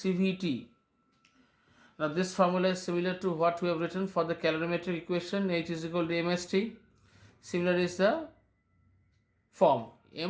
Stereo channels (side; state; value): both; identical; correlation 1.00